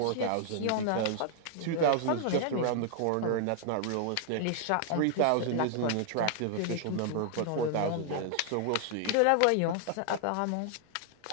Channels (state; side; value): different; both; correlation 0.00